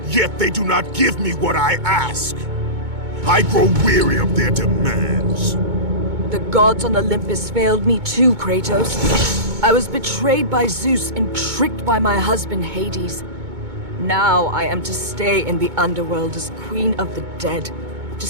yet they do not give me what I ask. I grow weary of their demands. The gods on Olympus failed me too, Kratos. I was betrayed by Zeus and tricked by my husband Hades. Now I am to stay in the underworld as Queen of the Dead, to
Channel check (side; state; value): left; late; 2.2 ms